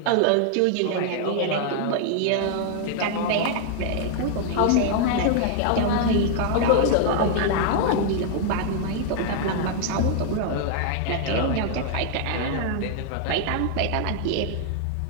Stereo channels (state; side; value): different; both; correlation 0.00